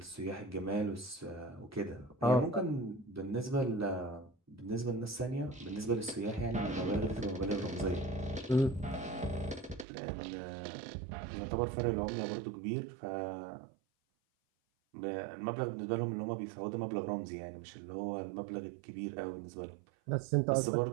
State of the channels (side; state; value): left; drops out; at 9.9 s